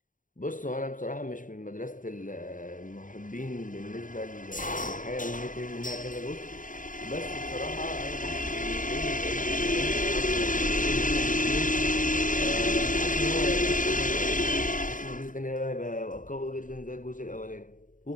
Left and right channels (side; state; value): right; late; 0.38 ms